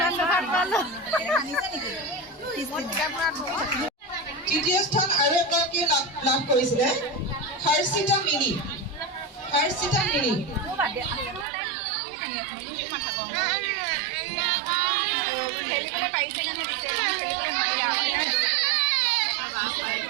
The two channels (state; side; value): drops out; left; at 11.5 s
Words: তৃতীয় স্থান আৰু এগৰাকী লাভ কৰিছিলে হৰ্ষিতা মিনি